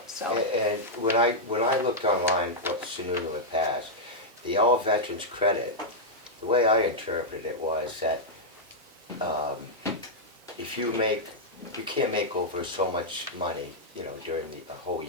so. And when I looked online what Sununu had passed, the all veterans credit, the way I interpreted it was that if you can't make over so much money, during the whole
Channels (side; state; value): both; normal; correlation -0.06